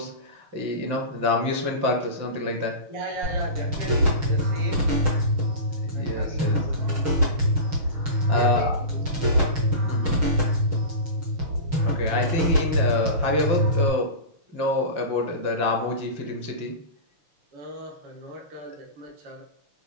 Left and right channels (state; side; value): late; left; 6.4 ms